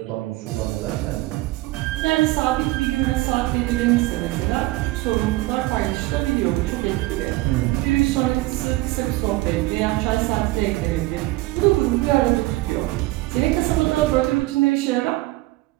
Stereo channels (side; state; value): left; quieter; 19.6 dB